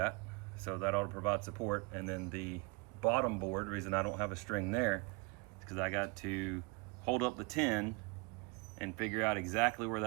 so that ought to provide support. And then the bottom board, the reason I don't have a string there is because I got to hold up the tin and figure out exactly where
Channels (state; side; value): quieter; left; 29.1 dB